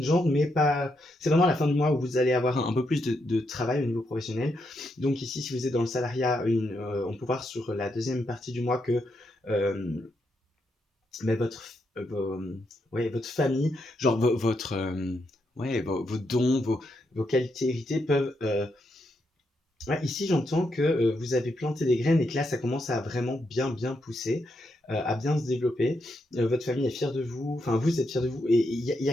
mais pas. C'est vraiment la fin du mois où vous allez avoir un peu plus de travail au niveau professionnel. Donc ici, si vous êtes dans le salariat, on peut voir sur la deuxième partie du mois que mais ouais, votre famille, genre ouais, vos dons, vos qualités héritées peuvent. Ouais, ici, j'entends que vous avez planté des graines et que là, ça commence à vraiment bien pousser, à bien se développer. Votre famille est fière de vous, enfin, vous êtes fiers de vous. Et il y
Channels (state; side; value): normal; both; correlation 0.81